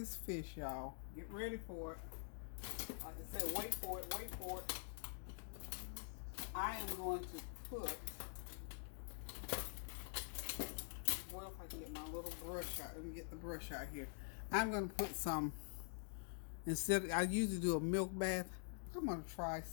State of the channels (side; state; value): right; silent; digital silence